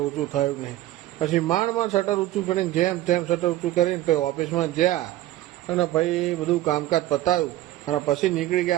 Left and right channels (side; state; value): left; quieter; 14.9 dB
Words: ઊંચું થયું નહીં. પછી માંડ શટર ઊંચું કરીને જેમ તેમ શટર ઊંચું કરીને પછી ઓફિસમાં જ્યાં અને ભાઈ બધું કામકાજ પતાવ્યું. અને પછી નીકળી